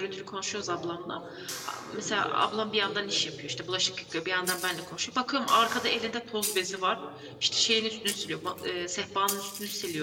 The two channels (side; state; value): both; identical; correlation 1.00